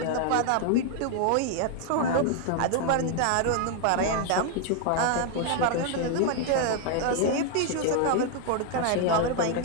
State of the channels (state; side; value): different; both; correlation 0.00